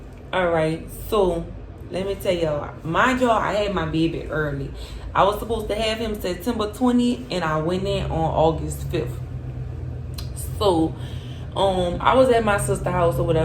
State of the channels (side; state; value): both; identical; correlation 1.00